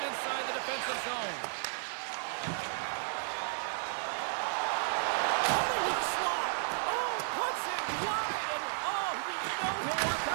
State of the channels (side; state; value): left; silent; digital silence